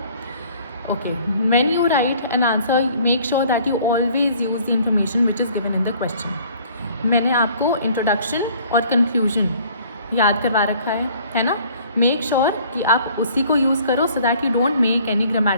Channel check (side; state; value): both; inverted; correlation -0.55